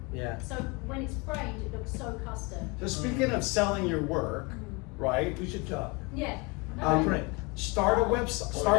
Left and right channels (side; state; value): right; quieter; 27.1 dB